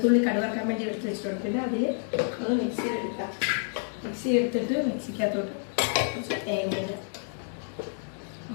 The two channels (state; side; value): silent; right; 57 dB below the other